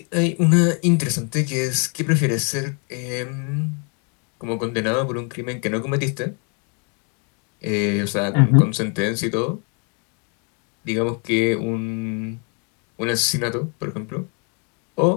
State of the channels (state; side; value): quieter; right; 37.4 dB